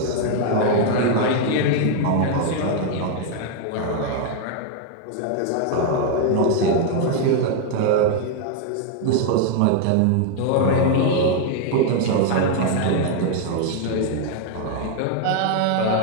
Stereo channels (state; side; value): different; both; correlation 0.00